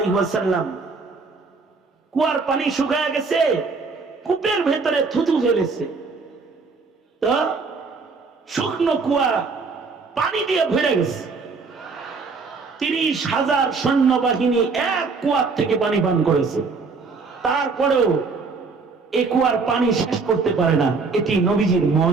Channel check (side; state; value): left; quieter; 4.5 dB